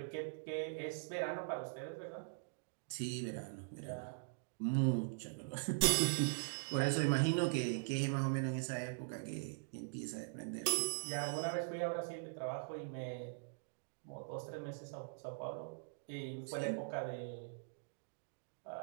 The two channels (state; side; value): silent; left; digital silence